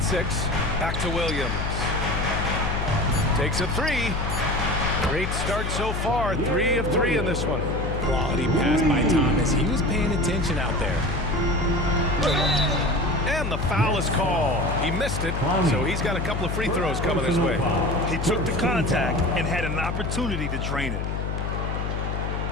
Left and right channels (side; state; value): left; noise; hum, 2 dB below the sound